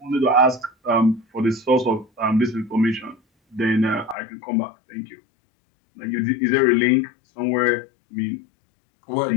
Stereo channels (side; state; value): right; drops out; at 4.2 s